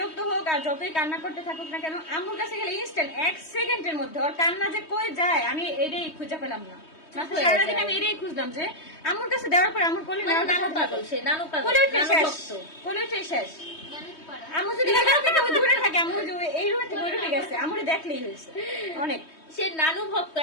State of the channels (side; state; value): right; late; 3.2 ms